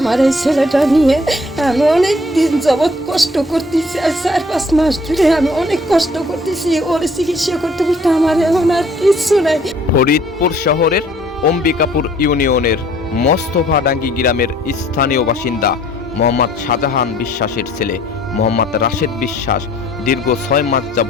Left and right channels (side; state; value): both; normal; correlation 0.59